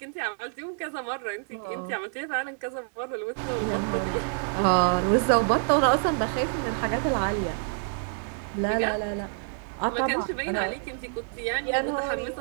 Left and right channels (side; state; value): left; silent; digital silence